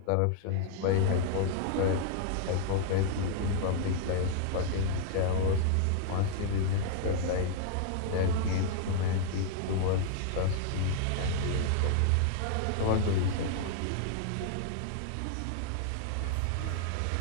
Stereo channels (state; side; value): different; both; correlation 0.00